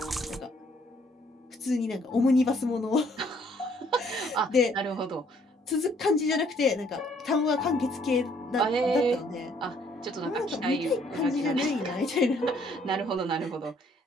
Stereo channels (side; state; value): both; normal; correlation 0.64